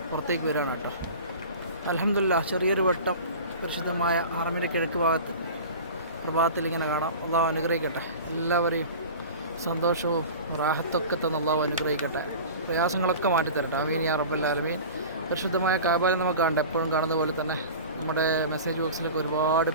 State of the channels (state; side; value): inverted; both; correlation -0.36